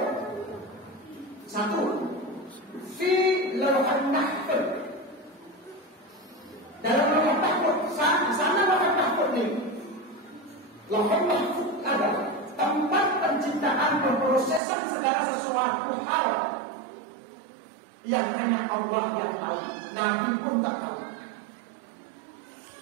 Satu, fi Lauhul Mahfuz. Dalam Lauhul Mahfuz, sana Lauhul Mahfuz ini. Lauhul Mahfuz adalah tempat penciptaan pemrosesan segala sesuatu hal yang hanya Allah yang tahu, Nabi pun tak tahu.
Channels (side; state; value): left; drops out; at 14.6 s